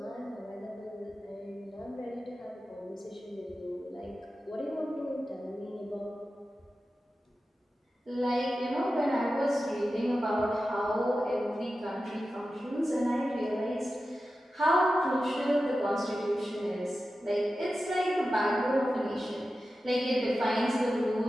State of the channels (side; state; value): both; normal; correlation 0.93